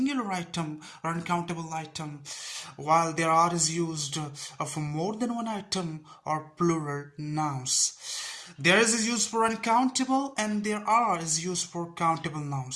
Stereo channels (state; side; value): identical; both; correlation 1.00